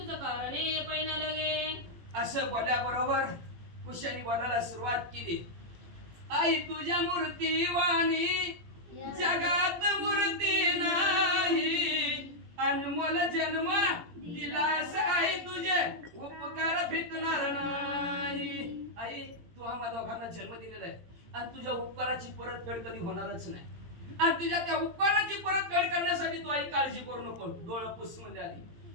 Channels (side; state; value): left; late; 17 ms